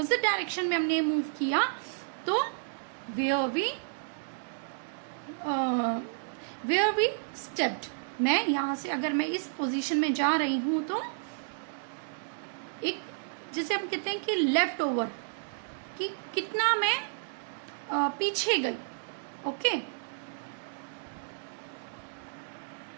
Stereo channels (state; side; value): silent; left; digital silence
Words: डायरेक्शन में हमने मूव किया तो वेयर वी स्टेप्ड। मैं यहां से अगर मैं इस पोजीशन में जा रही हूं तो एक, जिसे हम कहते हैं कि लेफ्ट ओवर, कि कितना मैं पीछे गई, ओके।